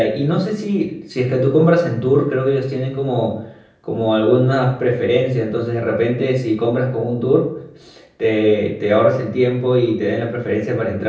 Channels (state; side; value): identical; both; correlation 1.00